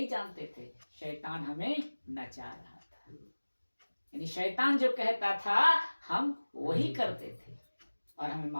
जानते थे, शैतान हमें नचा रहा था। यानी शैतान जो कहता था हम वही करते थे और हमें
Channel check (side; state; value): both; inverted; correlation -1.00